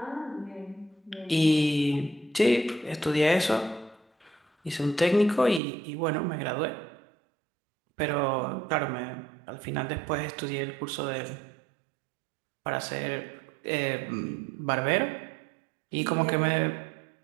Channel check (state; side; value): drops out; left; at 5.6 s